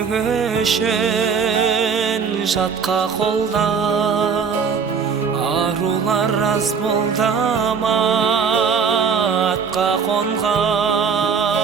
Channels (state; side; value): quieter; left; 6.1 dB